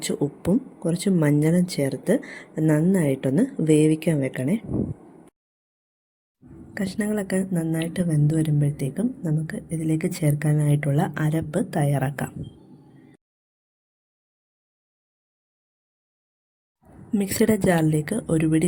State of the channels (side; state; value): both; identical; correlation 1.00